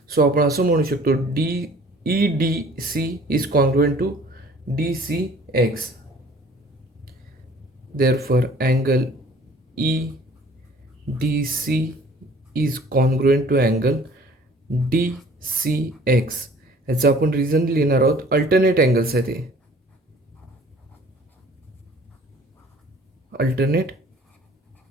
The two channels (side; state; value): both; normal; correlation 0.52